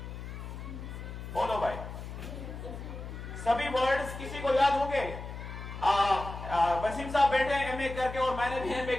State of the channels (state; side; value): noise; left; hum, 9 dB below the sound